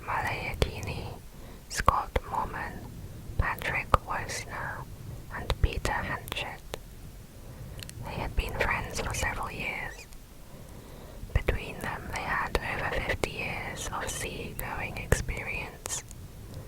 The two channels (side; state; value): both; identical; correlation 1.00